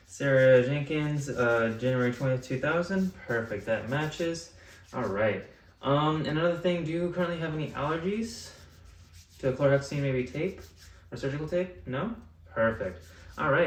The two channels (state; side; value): identical; both; correlation 1.00